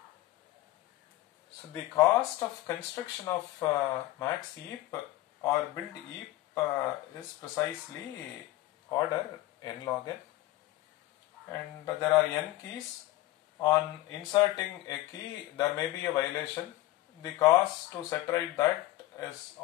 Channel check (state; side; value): quieter; right; 16.8 dB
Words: So the cost of construction of max heap or build heap is precisely order n log n, and there are n keys. On inserting a key there may be a violation. The cost to set right that is